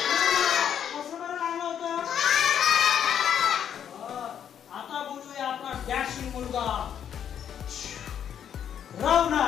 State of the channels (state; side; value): quieter; right; 9.0 dB